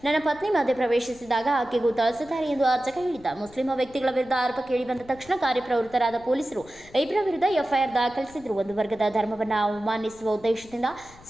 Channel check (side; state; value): left; noise; rumble, 23 dB below the sound